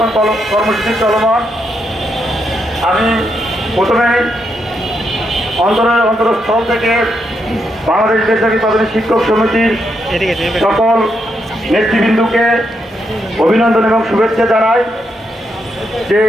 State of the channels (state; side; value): normal; both; correlation 0.80